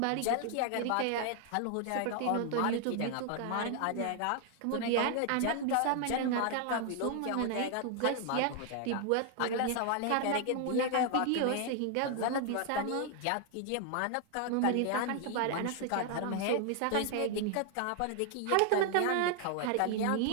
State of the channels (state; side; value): different; both; correlation 0.00